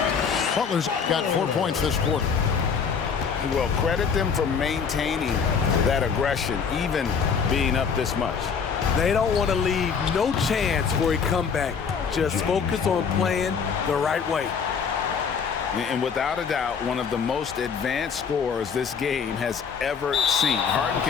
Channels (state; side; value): quieter; right; 6.3 dB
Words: Butler's got 4 points this quarter. Well, credit them for maintaining that aggression, even being up this much. They don't want to leave no chance for a comeback. Just focus on playing the right way. And without a doubt, one of the most advanced scorers this game has ever seen. Harden